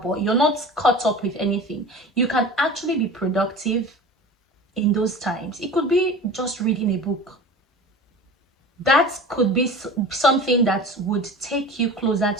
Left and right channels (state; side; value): normal; both; correlation 0.36